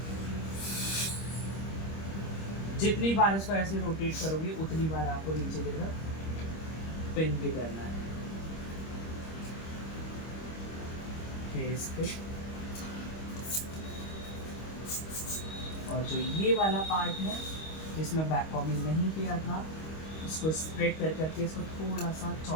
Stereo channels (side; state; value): right; late; 25 ms